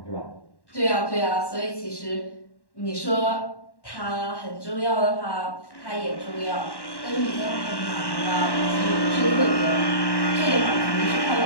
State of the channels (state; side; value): late; right; 1.1 ms